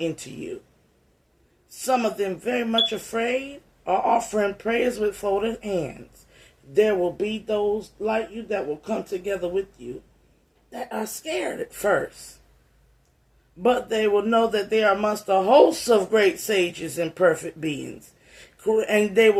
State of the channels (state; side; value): identical; both; correlation 1.00